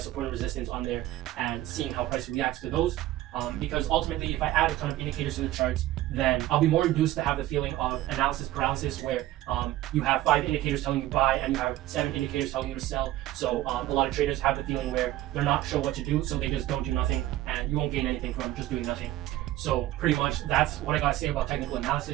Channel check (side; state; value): left; quieter; 15.0 dB